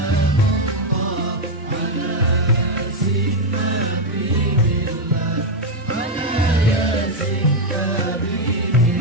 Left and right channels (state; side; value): normal; both; correlation 0.02